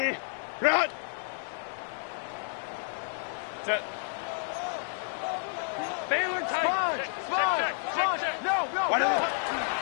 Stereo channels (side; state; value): right; silent; digital silence